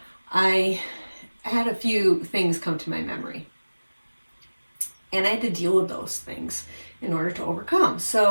I had a few things come to my memory. And I had to deal with those things in order to overcome.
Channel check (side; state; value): both; inverted; correlation -1.00